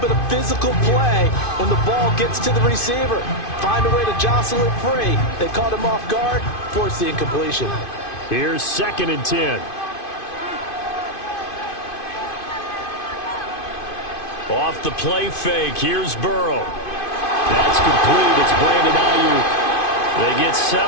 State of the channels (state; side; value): late; right; 2.5 ms